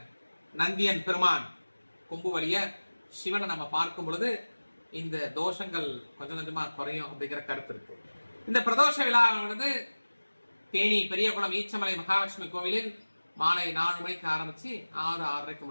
நந்தியன் பெருமான் கொம்பு வழிய சிவனை நம்ம பார்க்கும் பொழுது இந்த தோஷங்கள் கொஞ்சம் கொஞ்சமா குறையும் அப்படிங்கிற கருத்து இருக்கு. இந்த பிரதோஷ விழாவானது தேனி பெரியகுளம் ஈச்சமலை மகாலட்சுமி கோவிலில் மாலை 4 மணிக்கு ஆரம்பிச்சு 6-6:30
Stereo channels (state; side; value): inverted; both; correlation -1.00